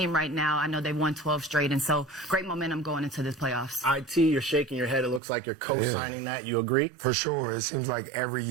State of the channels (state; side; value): drops out; left; at 5.2 s